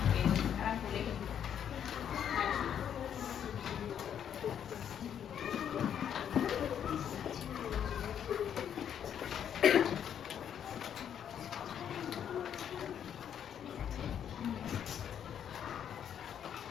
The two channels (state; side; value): quieter; right; 9.0 dB